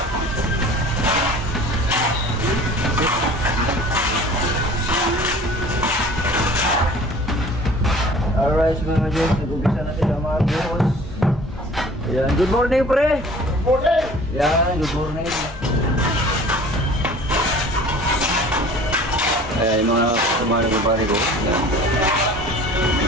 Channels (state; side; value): normal; both; correlation 0.46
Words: mga ka-joks, nag-umpisa na sila mga buhos. Ayan, good morning pre! Good morning! Ayan, good morning. Ayan, yung mga kumano ng pare ko. Ayan. Mga